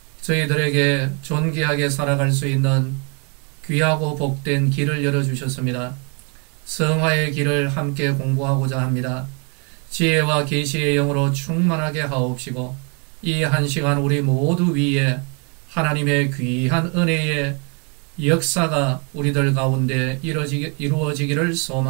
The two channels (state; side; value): quieter; left; 35.5 dB